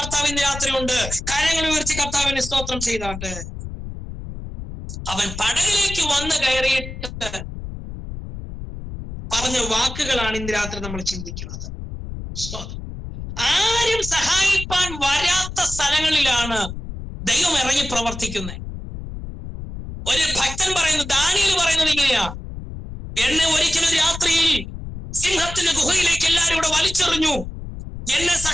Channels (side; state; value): left; noise; rumble, 9 dB below the sound